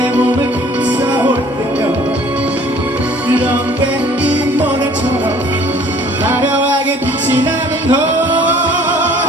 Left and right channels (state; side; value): normal; both; correlation 0.54